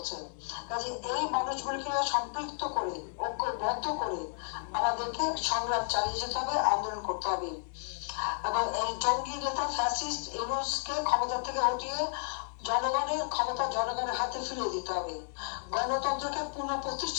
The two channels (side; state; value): right; silent; digital silence